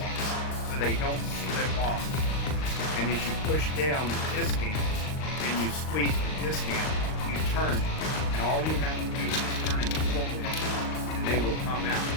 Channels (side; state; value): right; late; 39 ms